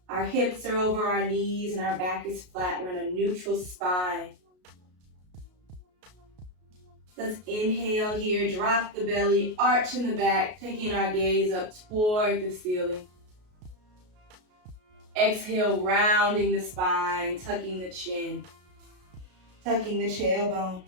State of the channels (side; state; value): left; late; 33 ms